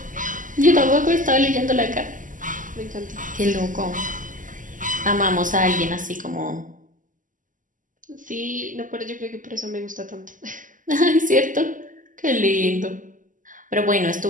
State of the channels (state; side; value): late; left; 0.38 ms